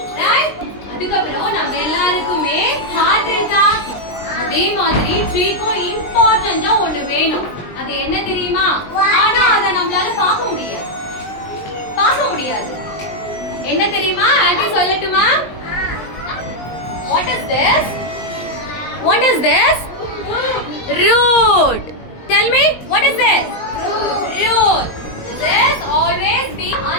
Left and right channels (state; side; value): late; right; 20 ms